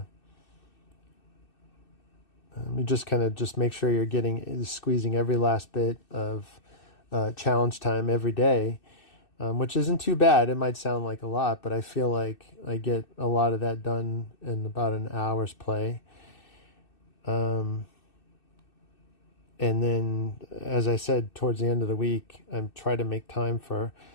just kind of just make sure you're squeezing every last bit of challenge time every day. Which isn't too bad. It might sound like a lot, but I feel like I get a lot of that done in about an hour's play. And then, as I said, towards the end of the week, I'm trying to make time for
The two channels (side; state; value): right; late; 2.6 ms